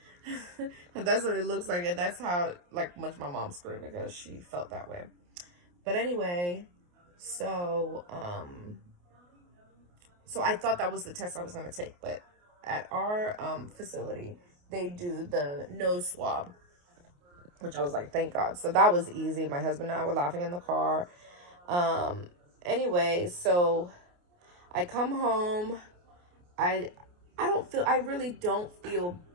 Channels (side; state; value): left; late; 28 ms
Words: That's what it looks like, and that's how like much my mom screamed because she felt that way. But anyway, so I thought that was the test I was going to take, but at our facility, they do the nose swab, which I was like, thank God. So that was easy. My husband and I were laughing in the car. Anyway, so I come home. I really don't feel